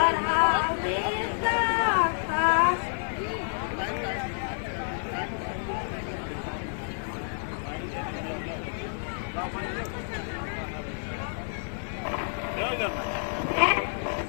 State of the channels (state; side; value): silent; right; digital silence